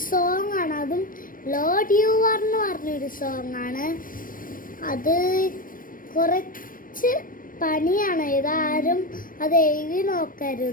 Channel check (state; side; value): late; right; 0.40 ms